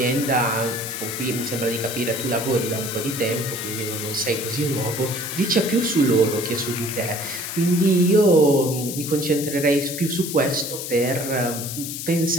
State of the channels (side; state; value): left; noise; hiss, 7 dB below the sound